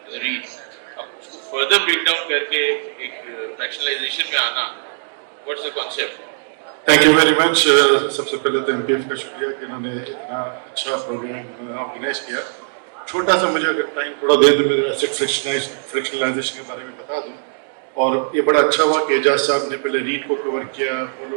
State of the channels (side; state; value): left; silent; digital silence